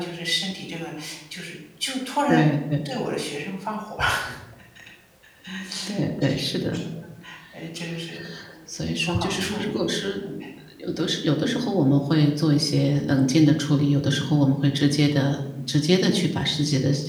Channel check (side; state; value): both; identical; correlation 1.00